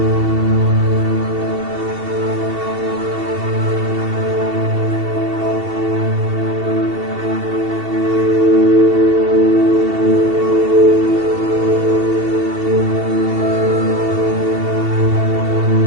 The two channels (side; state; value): left; late; 2.7 ms